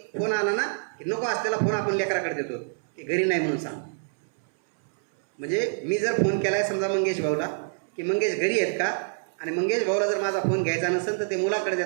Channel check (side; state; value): left; silent; 59 dB below the other